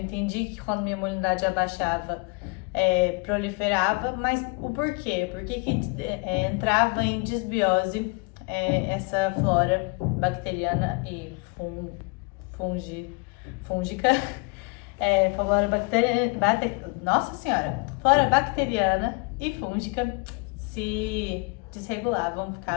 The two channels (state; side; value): quieter; right; 31.0 dB